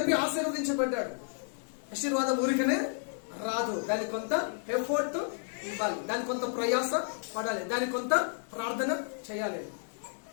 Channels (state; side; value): silent; right; digital silence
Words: ఆశీర్వదించబడ్డాడు. ఆశీర్వాదం ఊరికనే రాదు, దానికి కొంత ఎఫర్ట్ ఇవ్వాలి, దానికి కొంత ప్రయాస పడాలి, దానికి కొంత ప్రార్థన చేయాలి.